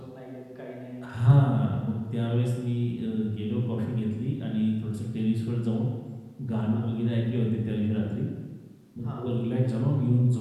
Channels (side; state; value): both; identical; correlation 1.00